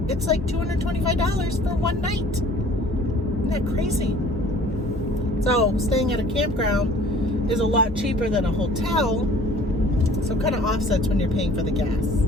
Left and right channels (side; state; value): both; normal; correlation 0.50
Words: like $225 for one night. Isn't that crazy? So staying at a campground is a lot cheaper than a hotel, so it kind of offsets when you're paying for the gas